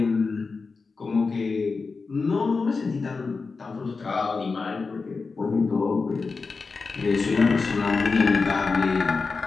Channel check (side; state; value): right; quieter; 4.4 dB